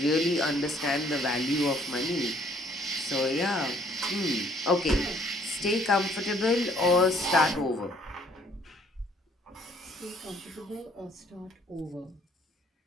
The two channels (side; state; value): both; normal; correlation 0.62